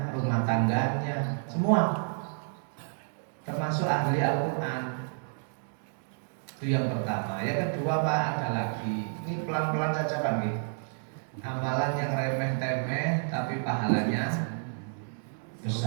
rumah tangganya, semua, termasuk ahli Al-Quran. Itu yang pertama. Yang kedua Pak, ada lagi, ini pelan-pelan saja Pak nih. Amalan yang remeh-temeh tapi pahalanya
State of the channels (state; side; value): silent; left; digital silence